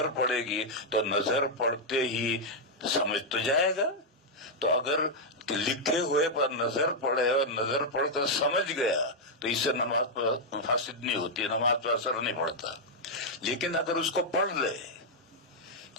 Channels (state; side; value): normal; both; correlation -0.03